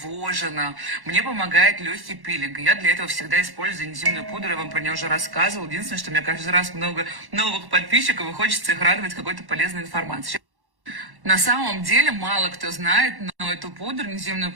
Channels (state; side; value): late; left; 1.1 ms